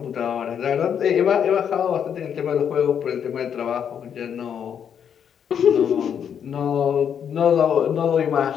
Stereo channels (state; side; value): quieter; right; 8.2 dB